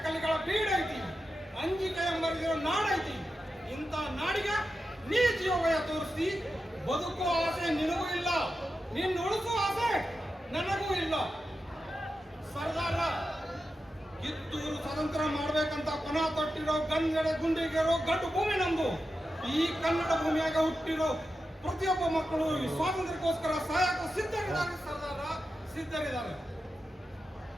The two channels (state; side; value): normal; both; correlation 0.90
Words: ಕಲಿಗಳ ಬೀಡೈತಿ, ಅಂಜಿಕೆ ಎಂಬರಿಗಿರೋ ನಾಡೈತಿ. ಇಂಥ ನಾಡಿಗೆ ನೀ ಜೀವಯ ತೋರಿಸಿ ಬದುಕುವ ಆಸೆ ನಿನಗೂ ಇಲ್ಲ, ನಿನ್ನ ಉಳಿಸುವ ಆಸೆ ನನಗೂ ಇಲ್ಲ. ಸರ್ದಾರ, ಕಿತ್ತೂರು ಸ್ವತಂತ್ರ ಮಾಡ್ಬೇಕಂತ ಪಣ ತೊಟ್ಟಿರೋ ಗುಂಡಿಗೆರೋ ಗಡ್ಡು ಭೂಮಿ ನಮ್ದು. ಈ ಕನ್ನಡ ಭೂಮಿಯಾಗ ಹುಟ್ಟಿರೋ ಪ್ರತಿಯೊಬ್ಬ ಮಕ್ಕಳು ಈ ಸ್ವಾತಂತ್ರ್ಯಕ್ಕೋಸ್ಕರ ಸಾಯಕ ಸಿದ್ಧರಿದ್ದಾರೆ. ಸರ್ದಾರ, ಸಿದ್ಧರಿದ್ದಾರೆ.